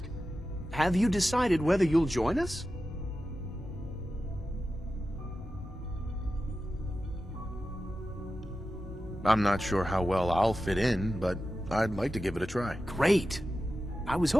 have you decided whether you'll join us? I'm not sure how well I'll fit in, but I'd like to give it a try. Great. I was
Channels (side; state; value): both; normal; correlation 0.92